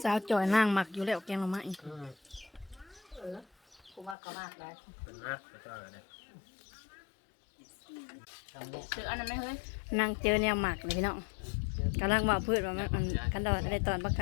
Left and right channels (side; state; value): right; drops out; at 4.2 s